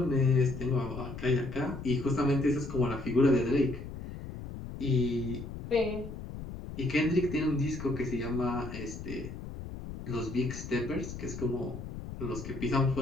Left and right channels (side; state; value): left; noise; rumble, 10 dB below the sound